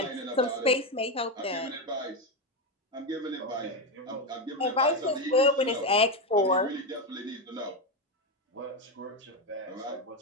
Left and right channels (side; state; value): both; normal; correlation 0.11